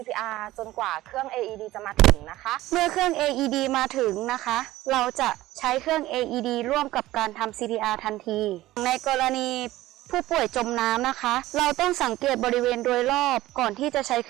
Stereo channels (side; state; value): left; quieter; 16.4 dB